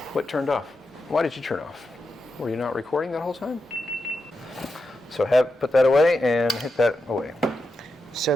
What turned off? Why did you turn off? Were you not recording that whole time? So put that away and hit that away. So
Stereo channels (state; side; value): normal; both; correlation 0.87